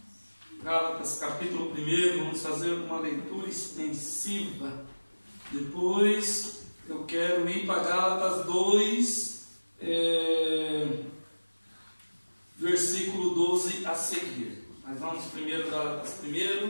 Gálatas, capítulo 1, vamos fazer uma leitura extensiva. Depois eu quero ir para Gálatas 2, versículo 12 a seguir. Mas vamos primeiro Gálatas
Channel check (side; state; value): both; inverted; correlation -1.00